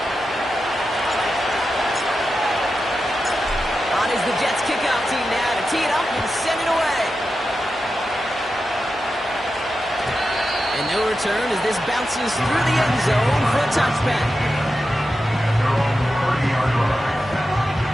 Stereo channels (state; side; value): normal; both; correlation 0.90